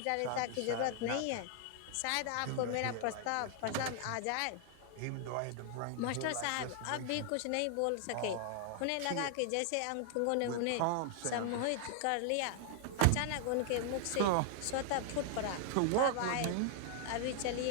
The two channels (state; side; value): different; both; correlation 0.00